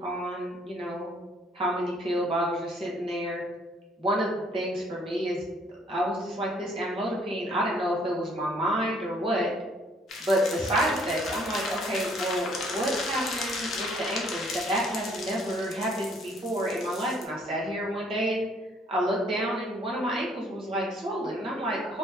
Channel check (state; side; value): normal; both; correlation 0.62